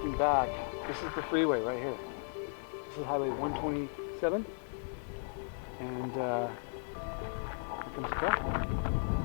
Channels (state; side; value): silent; right; digital silence